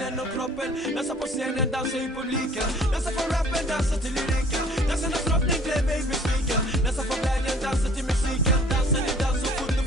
och kroppen. Dansa på scenen, dansa i publiken. Dansa på rappen, dansa till lyriken. Dansa när drottning blev mig besviken. Dansa på glädjen, dansa till musiken. Dansa din dans så fort du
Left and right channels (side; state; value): both; normal; correlation 0.54